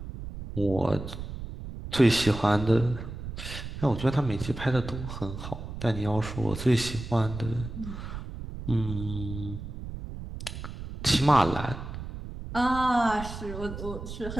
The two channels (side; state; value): right; noise; rumble, 9 dB below the sound